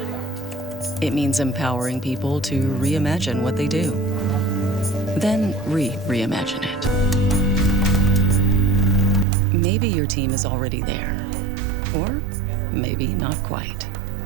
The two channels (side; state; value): left; drops out; at 9.2 s